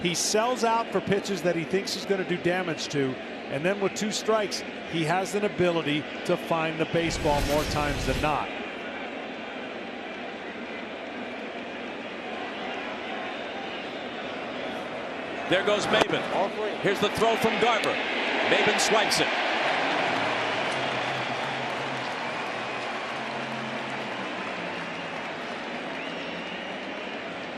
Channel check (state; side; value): identical; both; correlation 1.00